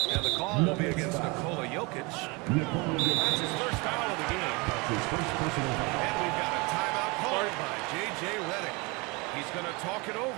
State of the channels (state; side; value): quieter; left; 27.4 dB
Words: And the call will be against Nikola Jokic. That's his first foul of the game. And we've got a timeout called by J.J. Redick. He's going to talk it